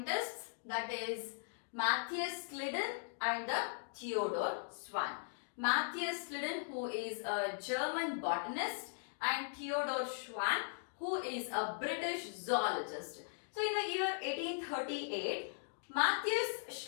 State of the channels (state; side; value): silent; right; digital silence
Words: that is Matthias Sliden and the Theodor Schwann. Matthias Sliden, who is a German botanist, and Theodor Schwann, who is a British zoologist. So in the year 1838, Matthias